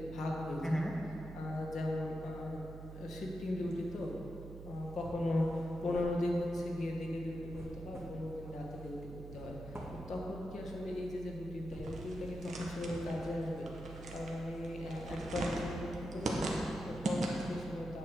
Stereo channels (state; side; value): noise; right; hum, 11 dB below the sound